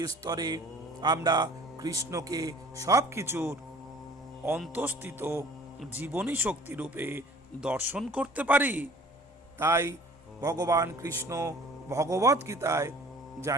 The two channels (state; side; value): normal; both; correlation 0.50